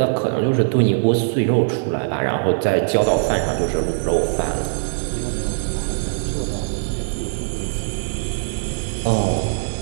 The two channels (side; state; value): left; silent; 56 dB below the other